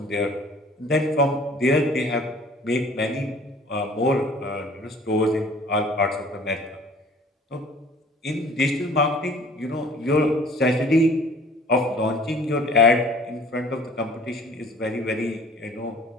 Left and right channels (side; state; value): both; normal; correlation 0.51